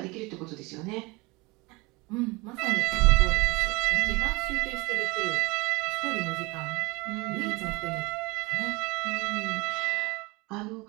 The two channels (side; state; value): left; quieter; 24.5 dB